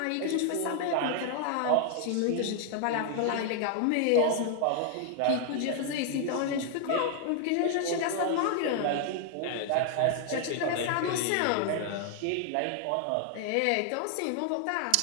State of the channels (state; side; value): different; both; correlation 0.00